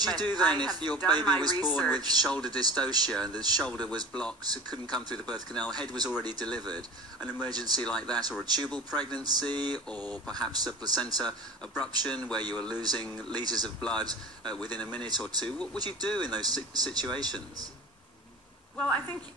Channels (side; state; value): both; normal; correlation 0.37